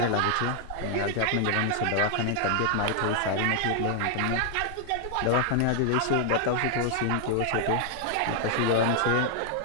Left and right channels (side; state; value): both; different; correlation 0.00